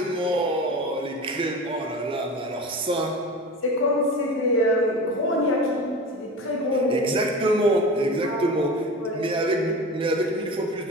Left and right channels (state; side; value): normal; both; correlation 0.32